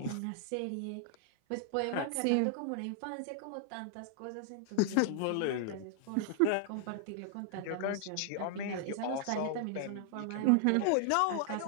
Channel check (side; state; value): both; different; correlation 0.00